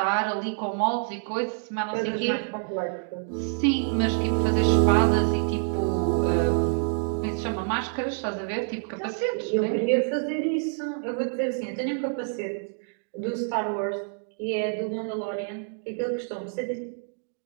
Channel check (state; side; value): silent; left; 58 dB below the other